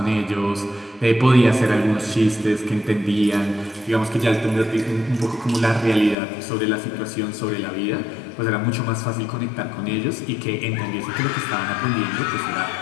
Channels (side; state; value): right; drops out; at 6.2 s